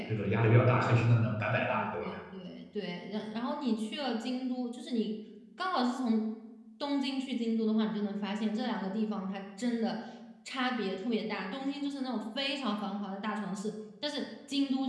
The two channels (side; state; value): both; identical; correlation 1.00